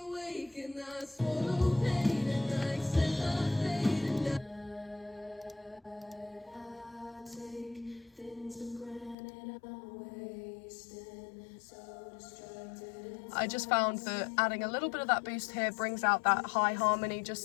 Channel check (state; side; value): drops out; right; at 9.2 s